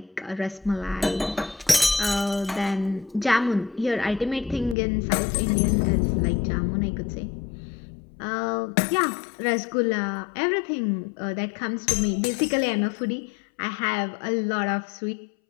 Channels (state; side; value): drops out; right; at 4.8 s